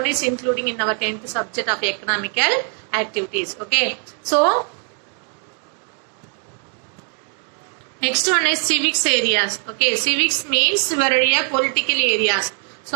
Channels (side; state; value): left; quieter; 39.5 dB